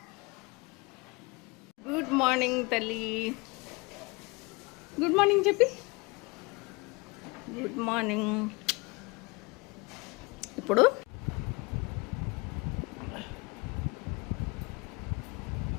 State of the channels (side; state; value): right; quieter; 26.9 dB